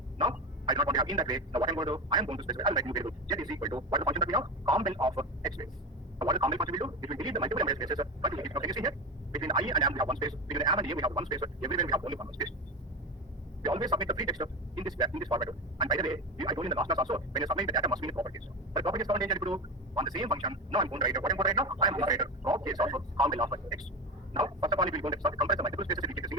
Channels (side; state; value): both; normal; correlation 0.20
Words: Now, I do not want to have in that way. Now, what I'm going to do, I am going to specify. I'll write new variable z is equal to what the function that we have compel of x space. So what the compel function will do? It will delete the multiple embedded spaces. But can you see here? Between I and am we have one space. Between am and a we have one space. Everywhere we have only one space. We always submit the free text in this format. And by the way, I told you in the last class also, when you submit the data must be in properties. But properties command engine to on the same function. Now I'm going to write what I'm going to write now. I am going to write a prop case of compel of x. Now, first of all, if we're going to compress the multiple spaces, we get a